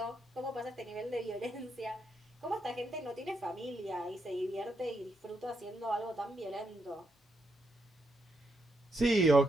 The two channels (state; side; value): normal; both; correlation 0.80